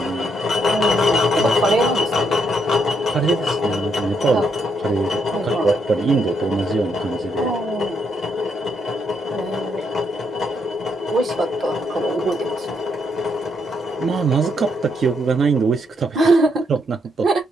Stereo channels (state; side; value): normal; both; correlation 0.76